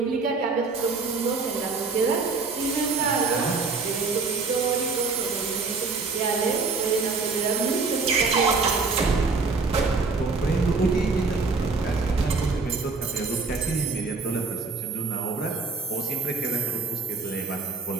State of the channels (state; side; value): quieter; left; 4.2 dB